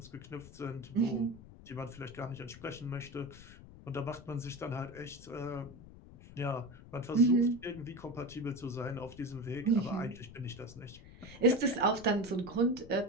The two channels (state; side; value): noise; left; rumble, 17 dB below the sound